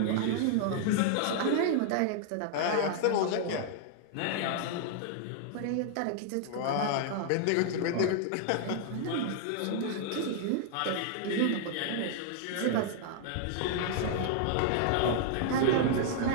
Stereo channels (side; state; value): both; different; correlation 0.00